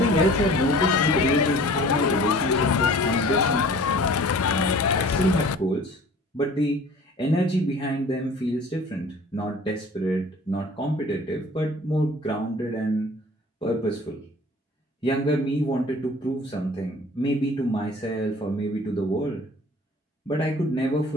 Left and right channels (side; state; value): both; normal; correlation 0.47